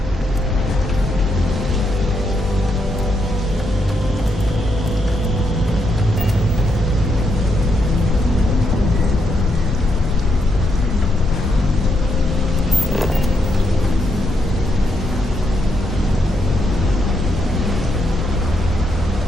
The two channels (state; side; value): normal; both; correlation 0.79